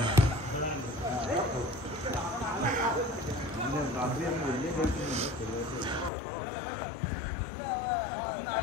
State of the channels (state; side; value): drops out; right; at 6.1 s